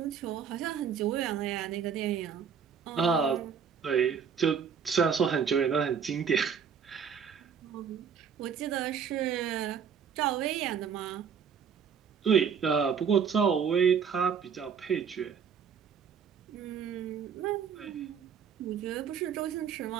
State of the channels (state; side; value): quieter; left; 7.1 dB